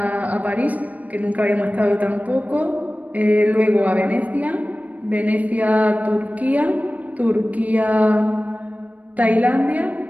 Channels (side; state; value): left; late; 0.073 ms